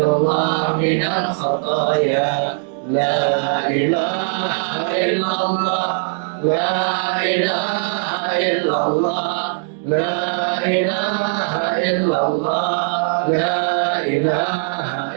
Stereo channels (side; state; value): left; silent; digital silence